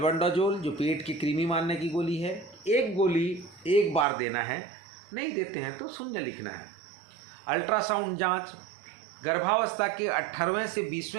जो पेट की कृमि मारने की गोली है, 1 गोली एक बार देना है। नहीं देते हैं तो 0 लिखना है। अल्ट्रासाउंड जांच गर्भावस्था के 18वें से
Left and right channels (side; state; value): left; drops out; at 4.0 s